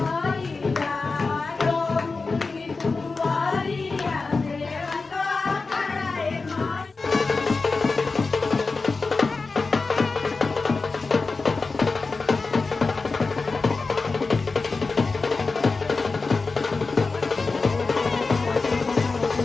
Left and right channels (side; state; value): right; quieter; 4.0 dB